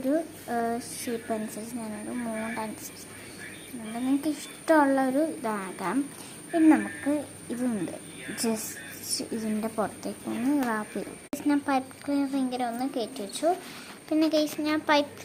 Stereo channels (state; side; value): identical; both; correlation 1.00